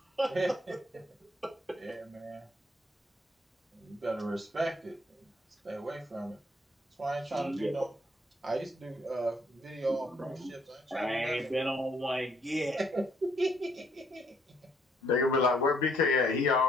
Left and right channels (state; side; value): normal; both; correlation 0.68